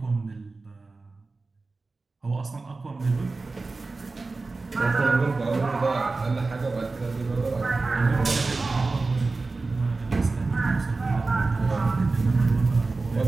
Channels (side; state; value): left; quieter; 3.7 dB